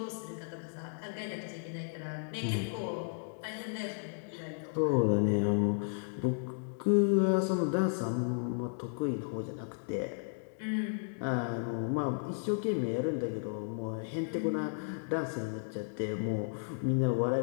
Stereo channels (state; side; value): silent; right; digital silence